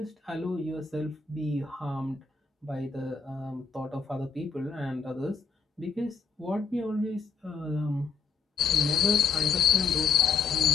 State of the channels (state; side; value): quieter; right; 5.3 dB